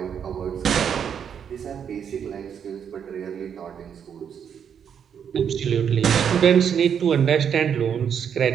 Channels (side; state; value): left; quieter; 7.9 dB